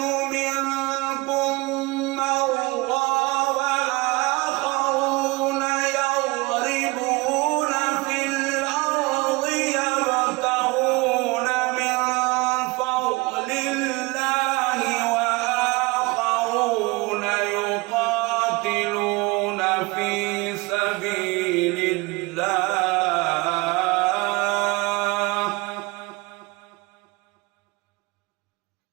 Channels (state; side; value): quieter; left; 24.2 dB